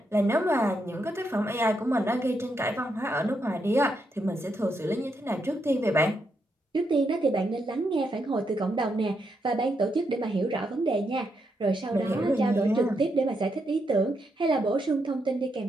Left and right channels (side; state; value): both; normal; correlation 0.80